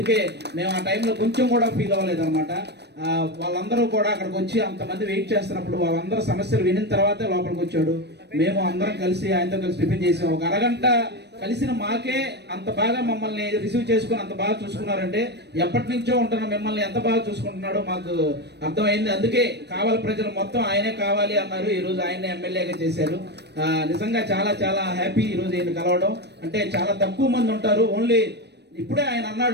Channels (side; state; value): left; late; 0.49 ms